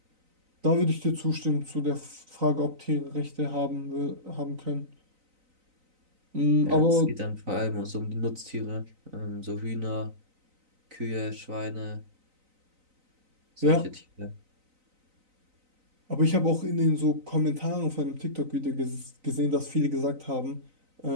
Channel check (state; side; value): late; left; 3.9 ms